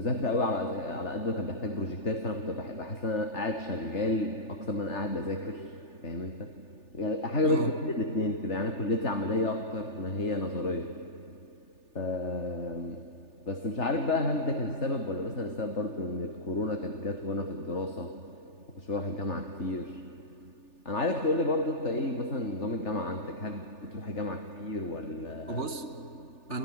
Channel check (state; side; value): late; right; 3.4 ms